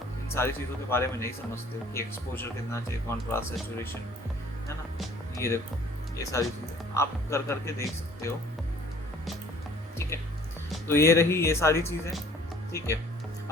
इन सारी चीज़ों के बारे में नहीं समझते हो कि एक्सपोजर कितना चाहिए, कॉन्ट्रास्ट, सैचुरेशन, है ना। ये देखो, ये सारी चीज़ें आप कर करके देख सकते हो। ठीक है, तो ये रही ये सारी चीज़ें। ठीक है,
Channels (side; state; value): both; normal; correlation 0.53